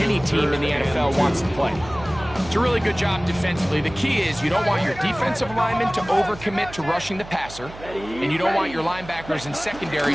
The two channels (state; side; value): noise; right; hum, 16 dB below the sound